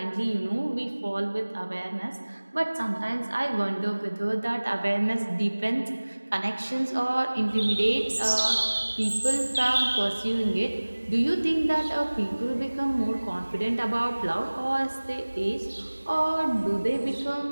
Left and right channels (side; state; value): both; inverted; correlation -1.00